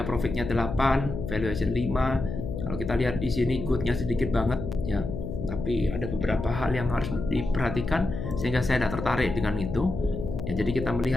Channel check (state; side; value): noise; left; hum, 6 dB below the sound